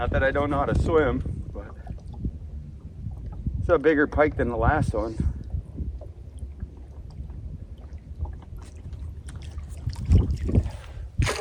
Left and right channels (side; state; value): both; identical; correlation 1.00